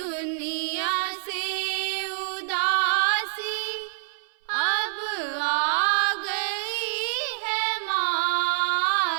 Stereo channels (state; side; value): silent; left; 61 dB below the other